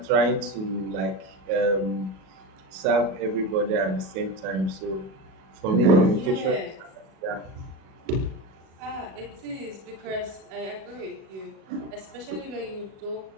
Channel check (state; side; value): late; left; 37 ms